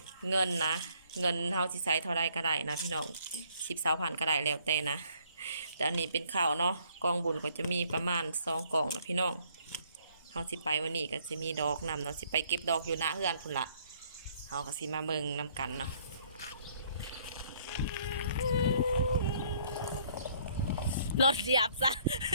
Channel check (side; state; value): both; inverted; correlation -0.64